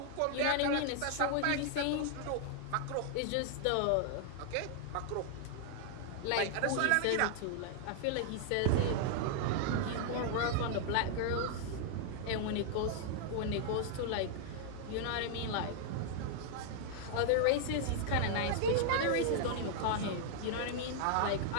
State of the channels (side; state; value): both; different; correlation -0.01